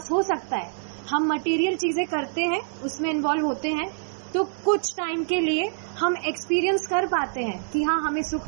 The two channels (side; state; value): left; silent; digital silence